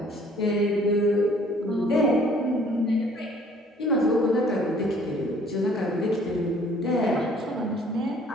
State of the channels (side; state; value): both; normal; correlation 0.57